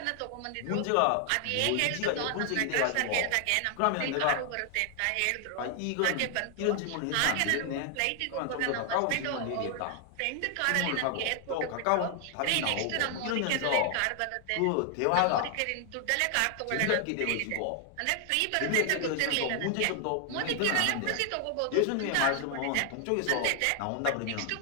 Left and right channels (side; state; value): both; different; correlation 0.00